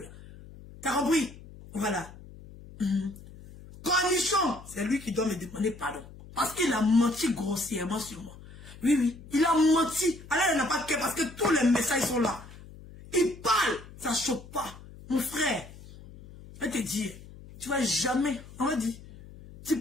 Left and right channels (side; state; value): left; noise; hum, 18 dB below the sound